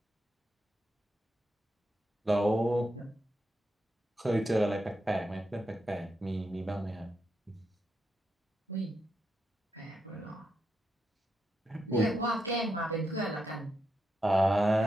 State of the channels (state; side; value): normal; both; correlation 0.84